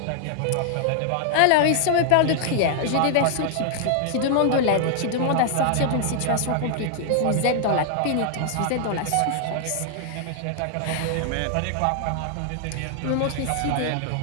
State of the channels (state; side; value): different; both; correlation -0.01